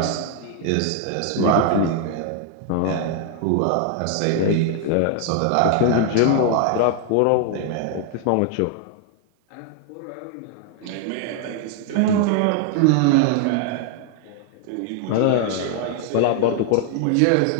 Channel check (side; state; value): both; different; correlation 0.00